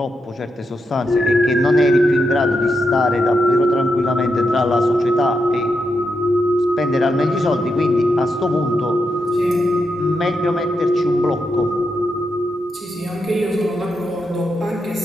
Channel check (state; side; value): normal; both; correlation 0.85